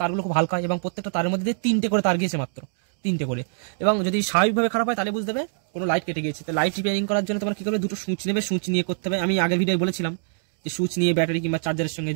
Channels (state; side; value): silent; left; digital silence